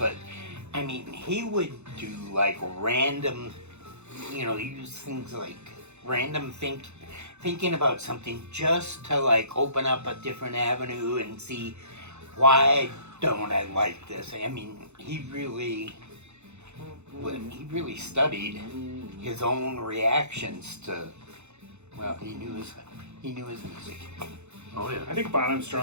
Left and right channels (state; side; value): late; left; 0.82 ms